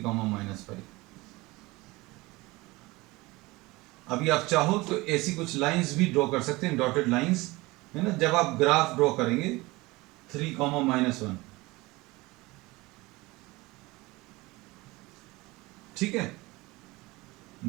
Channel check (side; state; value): left; quieter; 21.8 dB